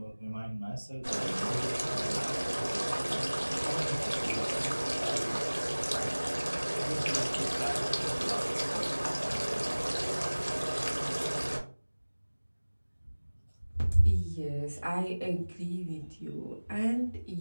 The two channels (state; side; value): inverted; both; correlation -1.00